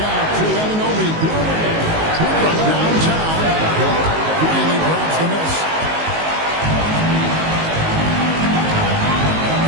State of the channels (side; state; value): left; late; 19 ms